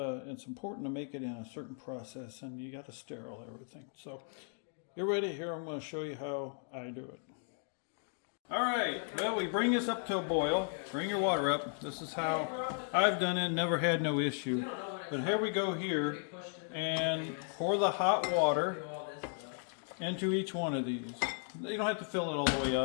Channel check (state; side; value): silent; right; 54 dB below the other